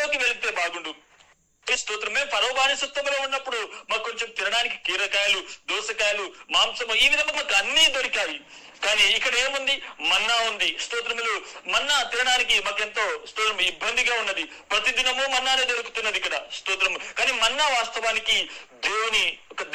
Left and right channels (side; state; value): both; identical; correlation 1.00